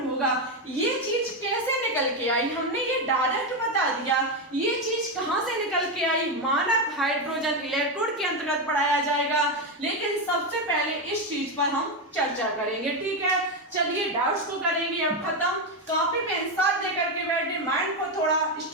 होगा। ये चीज कैसे निकल के आई, हमने ये डायरेक्ट बता दिया। ये चीज कहाँ से निकल के आई, मानक हाइड्रोजन इलेक्ट्रोड के अंतर्गत पढ़ाया जाएगा, लेकिन सबसे पहले इस चीज पर हम चर्चा करेंगे। ठीक है, चलिए डाउट्स को करेंगे अब खत्म। कॉपी पेन साथ लेकर के बैठे, माइंड को थोड़ा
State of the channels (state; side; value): normal; both; correlation 0.09